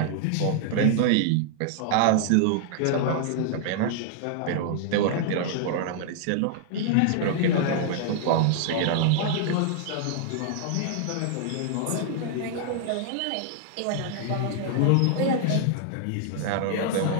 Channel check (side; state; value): both; different; correlation -0.01